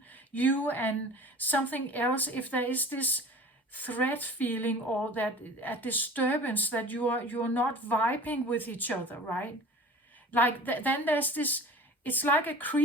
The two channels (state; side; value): normal; both; correlation 0.41